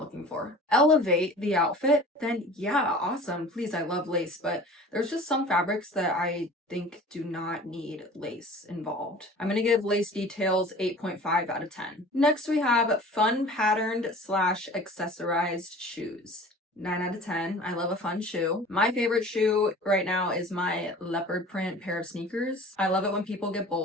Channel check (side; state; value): both; normal; correlation 0.43